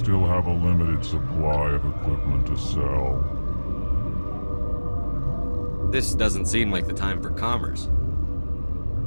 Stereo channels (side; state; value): both; inverted; correlation -1.00